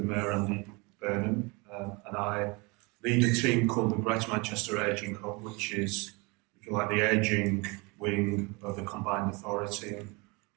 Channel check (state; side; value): quieter; left; 27.8 dB